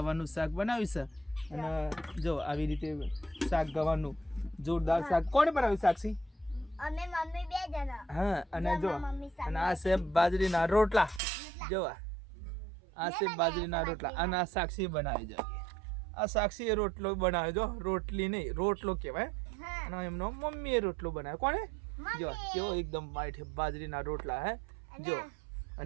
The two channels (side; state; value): left; drops out; at 11.2 s